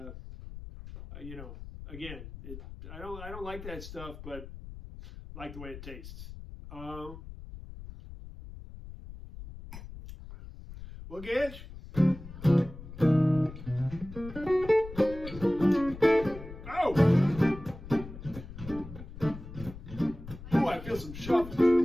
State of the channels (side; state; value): left; noise; rumble, 13 dB below the sound